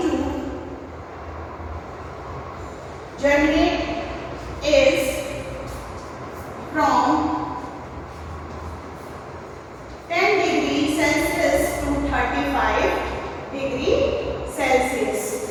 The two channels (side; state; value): both; identical; correlation 1.00